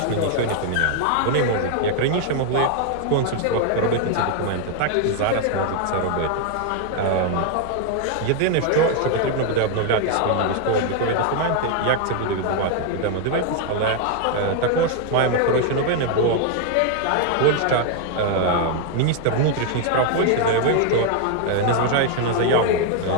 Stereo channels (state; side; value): different; both; correlation 0.00